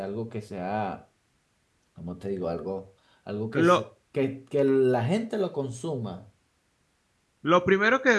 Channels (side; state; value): both; identical; correlation 1.00